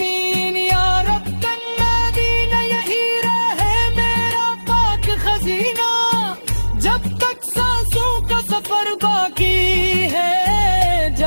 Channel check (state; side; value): inverted; both; correlation -1.00